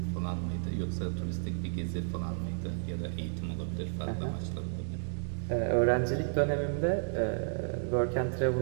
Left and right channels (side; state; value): left; silent; digital silence